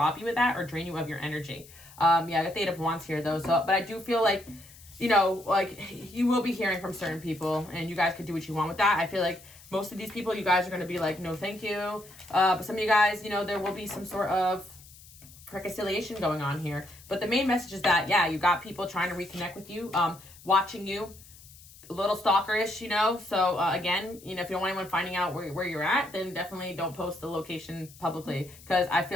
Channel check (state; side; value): noise; left; hiss, 21 dB below the sound